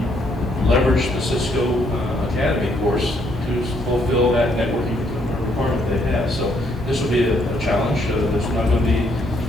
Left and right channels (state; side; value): normal; both; correlation 0.71